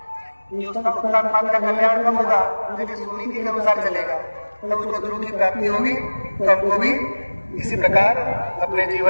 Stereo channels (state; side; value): inverted; both; correlation -1.00